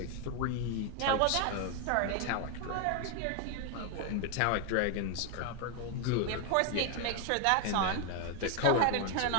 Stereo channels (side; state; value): both; different; correlation 0.01